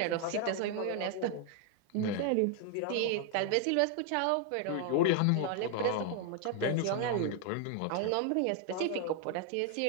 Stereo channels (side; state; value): both; different; correlation 0.00